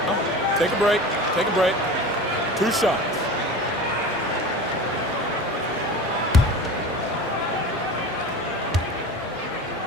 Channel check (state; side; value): normal; both; correlation 0.34